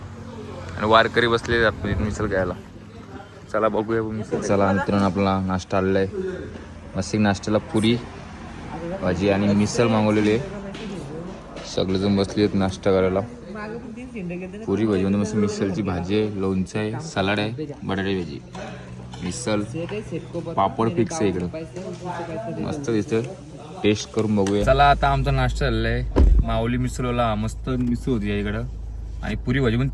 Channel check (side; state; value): both; identical; correlation 1.00